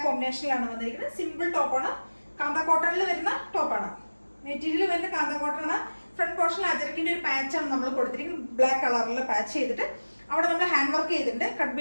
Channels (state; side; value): inverted; both; correlation -1.00